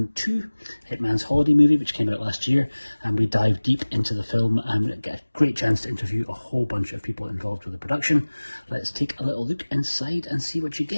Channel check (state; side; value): inverted; both; correlation -1.00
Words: 2, Hitman's holiday movie, which came out last year, and we dive deep into the film and get a great chance to interview a whole bunch of people involved with the production. Let's take a little look inside and see what you